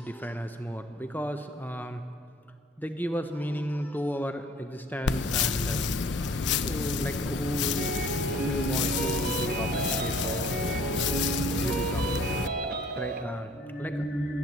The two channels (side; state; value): both; normal; correlation 0.55